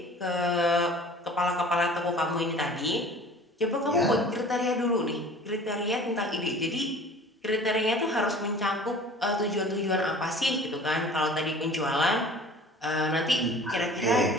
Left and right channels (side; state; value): both; normal; correlation 0.45